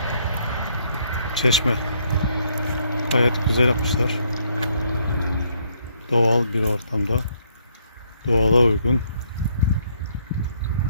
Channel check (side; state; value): both; inverted; correlation -0.69